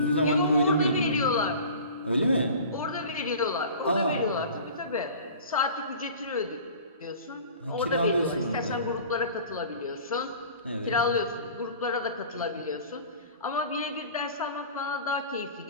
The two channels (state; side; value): inverted; both; correlation -0.41